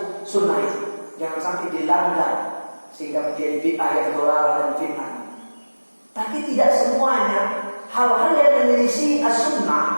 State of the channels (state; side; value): inverted; both; correlation -1.00